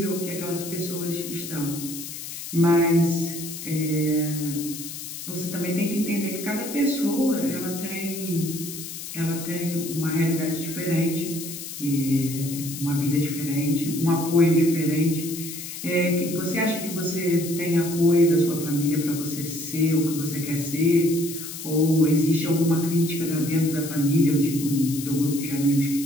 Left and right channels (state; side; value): noise; left; hiss, 9 dB below the sound